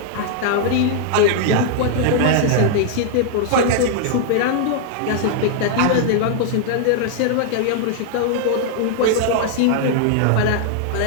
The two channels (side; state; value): both; different; correlation -0.01